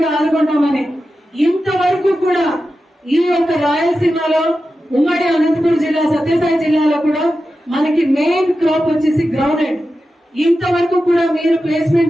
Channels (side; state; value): both; normal; correlation 0.92